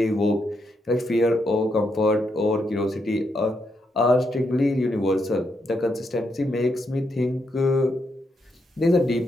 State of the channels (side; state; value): both; normal; correlation 0.80